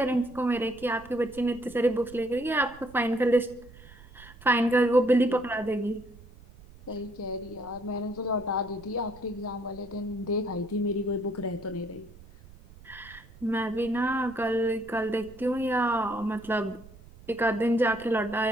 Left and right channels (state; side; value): noise; right; rumble, 21 dB below the sound